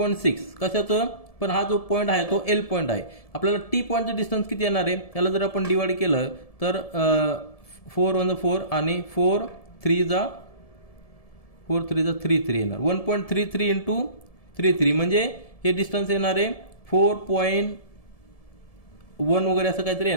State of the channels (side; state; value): right; late; 1.7 ms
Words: कशाचं, पण हा जो पॉईंट आहे तो एल पॉईंट आहे. आपल्याला टी पॉईंटचं डिस्टन्स किती येणार आहे, त्याला जर आपण डिवाइड केलं तर 4 1 4 आणि 4 3 जा 33 येणार. 1.33 इंटू 33 म्हणजे हे डिस्टन्स येणार आहे 4.1 वगैरे असं काहीतरी